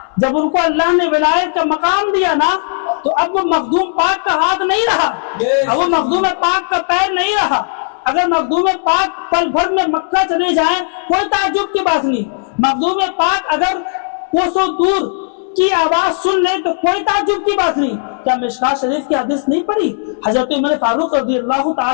جب ان کو اللہ نے ولایت کا مقام دیا نا تو اب وہ مخدوم پاک کا ہاتھ نہیں رہا، اب وہ مخدوم پاک کا پیر نہیں رہا. اگر مخدوم پاک پل بھر میں مکہ چلے جائیں کوئی تعجب کی بات نہیں. مخدوم پاک اگر کوسوں دور کی آواز سن لیں تو کوئی تعجب کی بات نہیں. کیا مشکات شریف کی حدیث نہیں پڑھی؟ حضرت عمر فاروق رضی اللہ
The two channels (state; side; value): silent; right; digital silence